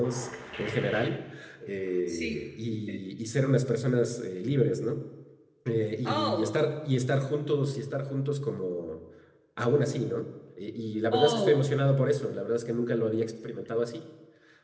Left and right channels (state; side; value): identical; both; correlation 1.00